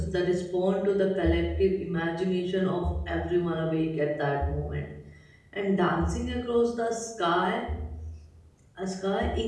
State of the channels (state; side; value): identical; both; correlation 1.00